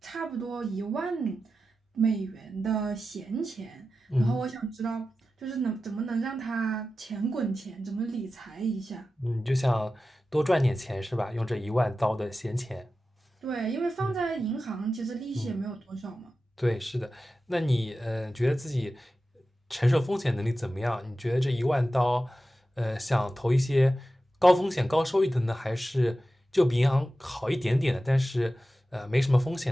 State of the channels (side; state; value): both; normal; correlation 0.93